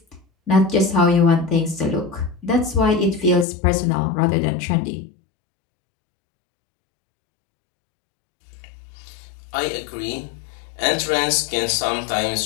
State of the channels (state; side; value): drops out; right; at 3.5 s